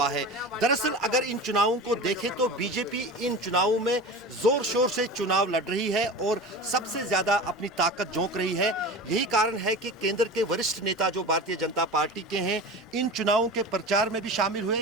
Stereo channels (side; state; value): both; normal; correlation 0.31